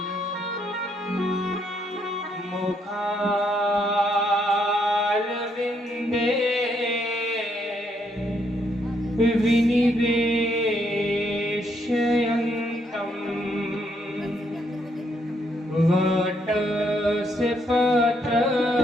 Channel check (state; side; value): normal; both; correlation 0.73